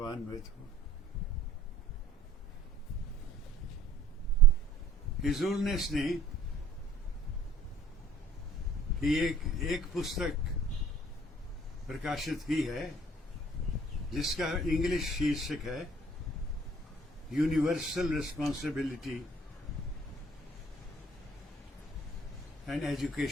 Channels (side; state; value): both; normal; correlation 0.55